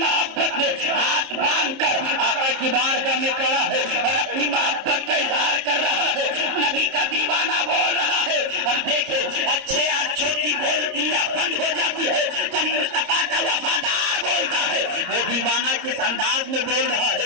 میں ہاتھ باندھ کر آقا کی بارگاہ میں کھڑا ہے اور اپنی محبت کا اظہار کر رہا ہے، نبی کا دیوانہ بول رہا ہے۔ اب دیکھیں اچھے اچھوں کی بولتیاں بند ہو جاتی ہے، جب مصطفیٰ کا وفادار بولتا ہے، وہ دیوانہ کس انداز میں بول رہا ہے؟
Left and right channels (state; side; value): late; left; 31 ms